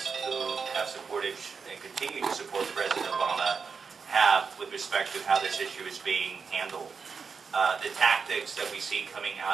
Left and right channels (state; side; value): quieter; left; 5.5 dB